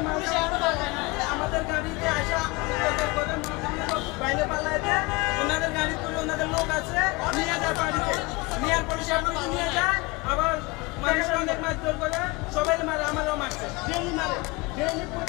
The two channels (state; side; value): quieter; right; 24.6 dB